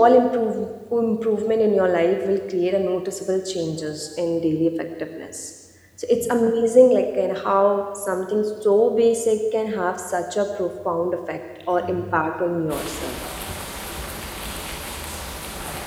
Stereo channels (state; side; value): identical; both; correlation 1.00